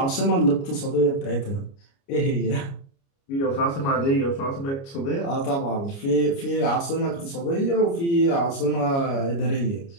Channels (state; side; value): late; right; 29 ms